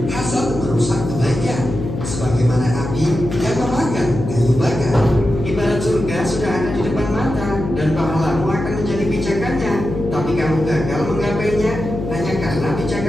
hasad merusak kebaikan. Sebagaimana api yang memakan kayu bakar. Ibarat surga sudah ada di depan mata dan pahlamu akan menjadi pijakannya. Tapi kamu gagal menggapainya hanya karena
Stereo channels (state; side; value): noise; left; hum, 6 dB below the sound